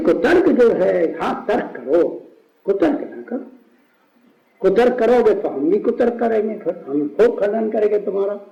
कुतर्क जो है, हाँ तर्क करो, कुतर्क ना करो। कुतर्क करोगे तो हम भी कुतर्क करेंगे, फिर हम खूब खंडन करेंगे तुम्हारा।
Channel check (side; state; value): both; identical; correlation 1.00